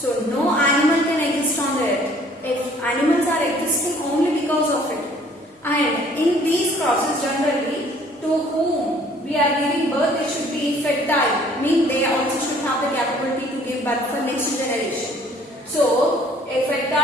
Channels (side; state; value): both; normal; correlation 0.57